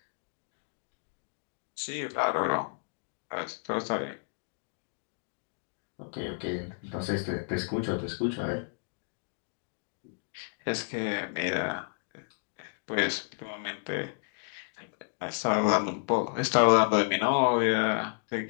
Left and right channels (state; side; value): silent; right; digital silence